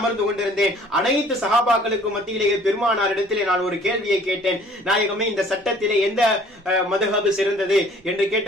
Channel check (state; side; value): normal; both; correlation 0.54